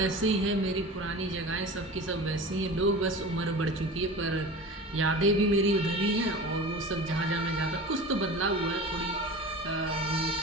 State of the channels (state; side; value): normal; both; correlation 0.34